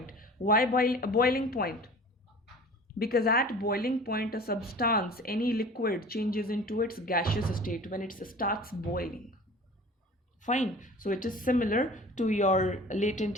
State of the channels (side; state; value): both; normal; correlation 0.42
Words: Why boiling point? Because at boiling point a substance, any liquid, changes into its gaseous state when it starts boiling. Fine. So it is similar to your latent